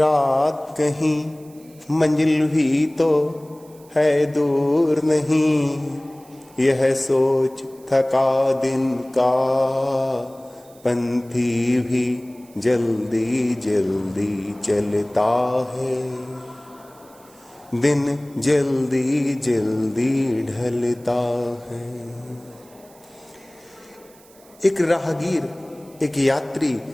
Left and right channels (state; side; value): noise; right; hiss, 27 dB below the sound